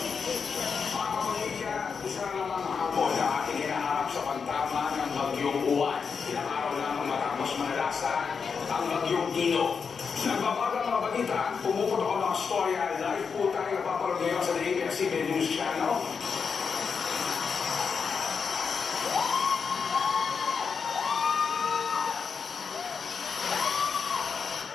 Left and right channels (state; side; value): quieter; right; 5.8 dB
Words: Isa naman hapon na ating hinaharap sa pagtama ng bagyong Uwan. Ilang araw lamang matapos manalasan ang bagyong Ino. Nagbabagang mga balita, pumuputok ang mga storya, live po tayo napapalog ngayon sa ABS-CBN News Channel.